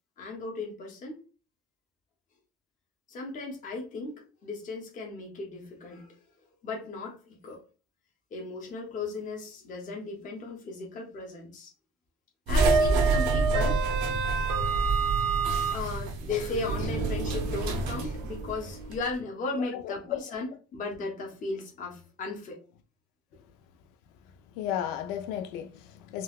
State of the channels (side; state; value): both; normal; correlation 0.50